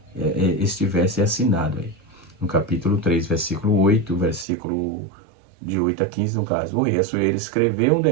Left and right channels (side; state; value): left; drops out; at 4.5 s